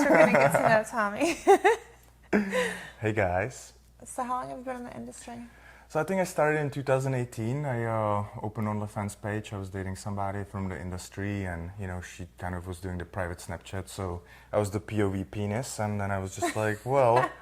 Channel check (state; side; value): identical; both; correlation 1.00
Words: we're gonna get to know Tommy. Hey guys. So, how long have you been in the industry? So I think I started in 2018. I opened OnlyFans page. I was dating somebody from the industry, and she kind of was doing the private Snapchat. So I was the POV penis, and then I was just like, well,